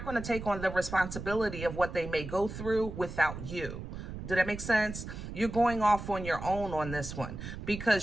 going to take on the responsibility of what they may go through without you. Did that make sense? You're going off on your own on this one,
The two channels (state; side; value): noise; right; rumble, 9 dB below the sound